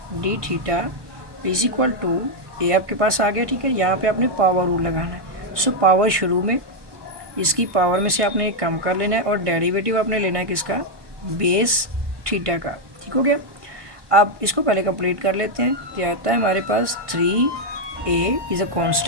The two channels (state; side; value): late; left; 1.2 ms